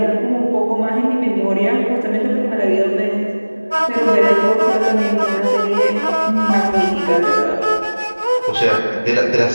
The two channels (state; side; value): inverted; both; correlation -1.00